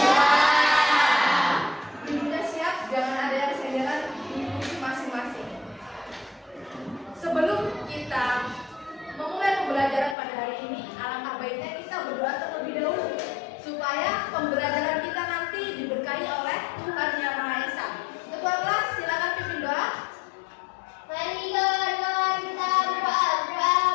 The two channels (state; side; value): drops out; right; at 10.2 s